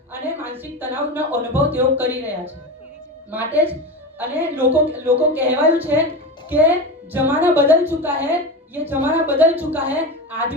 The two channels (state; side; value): normal; both; correlation 0.23